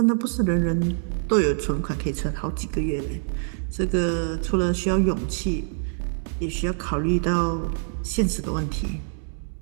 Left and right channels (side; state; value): left; silent; 62 dB below the other